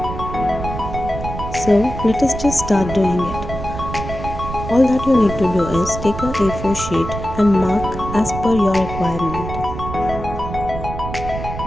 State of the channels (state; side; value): noise; right; rumble, 8 dB below the sound